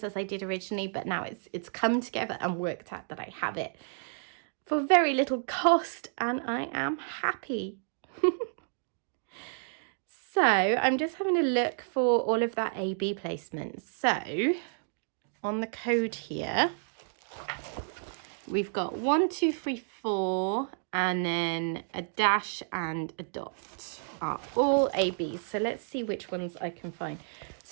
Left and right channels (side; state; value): left; silent; digital silence